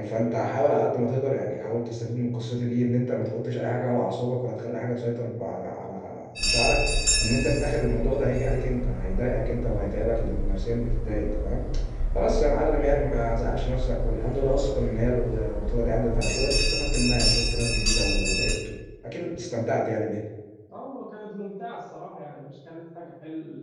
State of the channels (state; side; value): identical; both; correlation 1.00